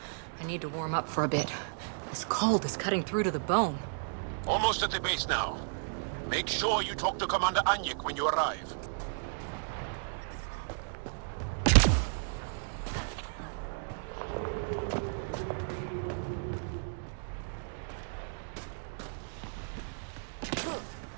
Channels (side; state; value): left; silent; digital silence